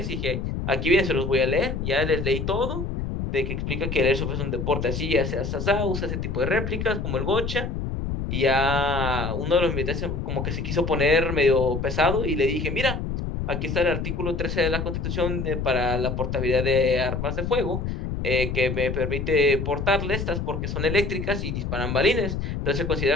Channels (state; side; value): noise; left; rumble, 3 dB below the sound